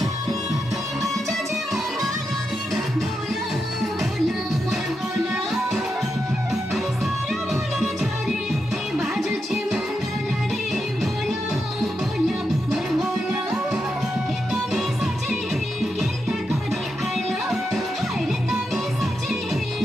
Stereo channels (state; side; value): normal; both; correlation 0.85